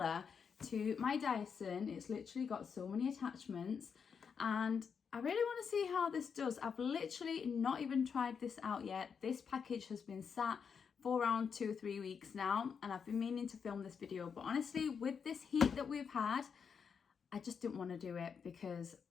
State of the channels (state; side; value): quieter; right; 6.4 dB